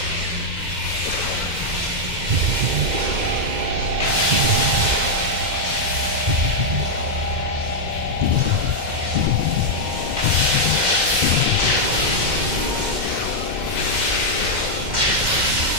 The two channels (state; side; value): late; left; 2.1 ms